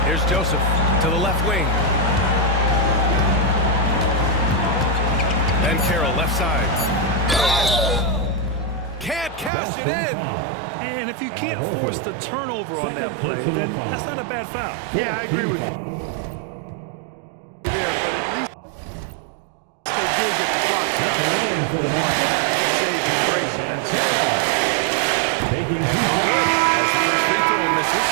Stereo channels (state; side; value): drops out; left; at 9.5 s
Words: Here's Joseph to the left wing. And Carroll left side. Can't cash it in. And if you can't force the turnover on that play, then that's not a bad foul. Yeah, I agree with you. There, but at least they did get the clock stopped. Saving grace in that second. And no good as the first free throw misses.